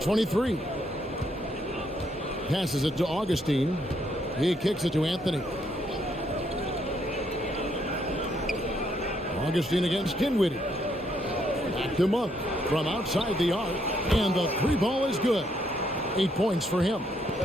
23. Passes it to Augustine. He kicks it to Anthony. Augustine against Dinwiddie. Back to Monk from outside the arc. And the 3 ball is good. 8 points for him.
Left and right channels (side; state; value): both; normal; correlation 0.73